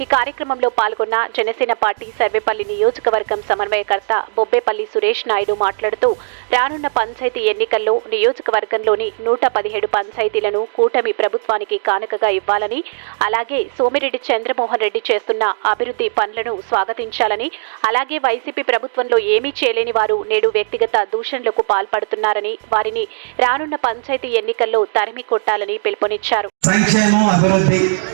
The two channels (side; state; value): left; silent; 68 dB below the other